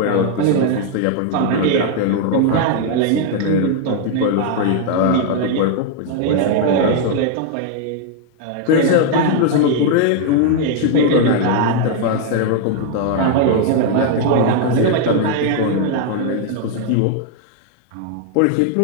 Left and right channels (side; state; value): both; different; correlation 0.00